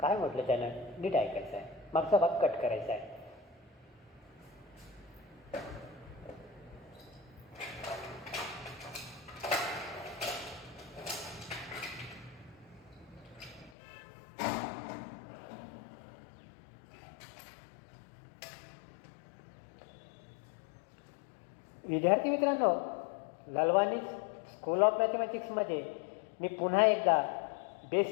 नीट ऐकायचं आहे. मागचा भाग कट करायचा आहे. विद्यार्थी मित्रांनो, ललवानी स्कूल ऑफ मॅथमॅटिक्समध्ये मी पुन्हा एकदा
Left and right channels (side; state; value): right; drops out; at 13.7 s